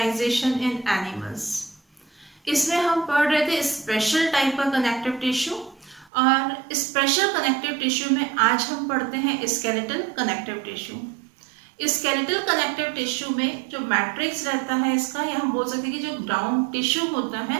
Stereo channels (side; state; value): left; drops out; at 6.1 s